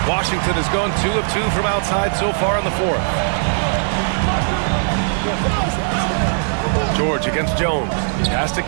Washington has gone 2 of 2 from outside so far in the 4th. George against Jones. Pass to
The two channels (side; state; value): left; silent; digital silence